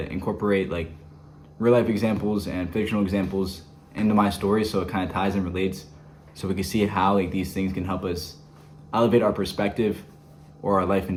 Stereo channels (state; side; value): identical; both; correlation 1.00